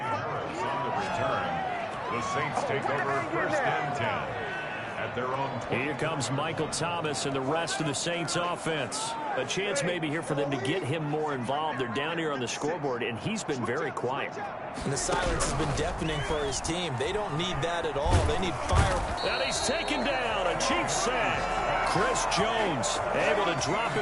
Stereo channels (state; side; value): identical; both; correlation 1.00